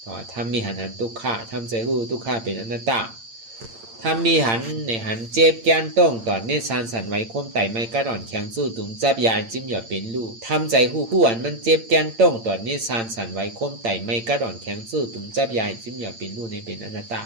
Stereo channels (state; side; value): late; left; 8.8 ms